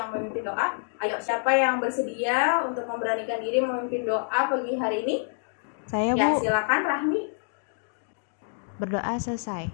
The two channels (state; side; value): silent; right; digital silence